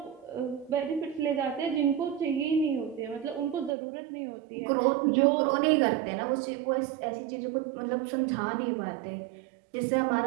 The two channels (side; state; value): left; drops out; at 3.8 s